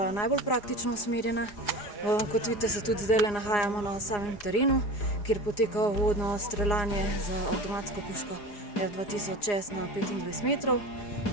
najbolj praktično usmerjena. Kot vidite, se tudi zdaj nahajamo na samem terenu, kjer poteka uvodno streljanje z avtomatsko puško F2000S na 25 metrov.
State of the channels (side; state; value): right; late; 4.8 ms